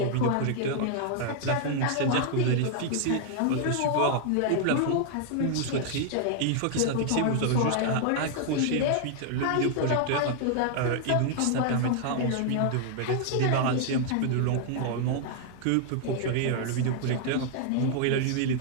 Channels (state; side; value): different; both; correlation 0.00